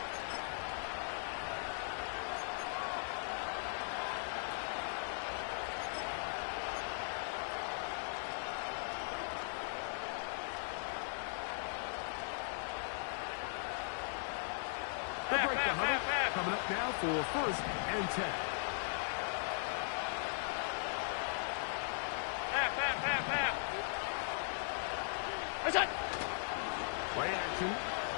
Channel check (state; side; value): silent; right; digital silence